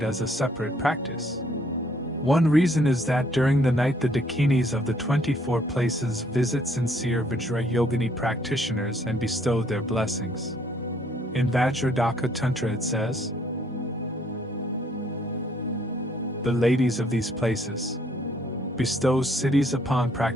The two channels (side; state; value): both; normal; correlation 0.65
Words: as a separate practice. One reason is that during the night the Dakinis of the 24 places visit sincere Vajra yogini practitioners and bestow their blessings. In Vajradhaka Tantra it says, "The ladies of these places bestows cities upon